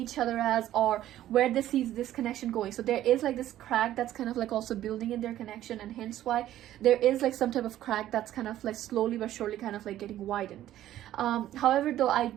each other as, or where they see this connection going. So there is like this crack that's kind of like also building in their connection, and hence why there is like some type of crack that's kind of like slowly but surely kind of like getting widened. However though, I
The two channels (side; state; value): left; quieter; 13.0 dB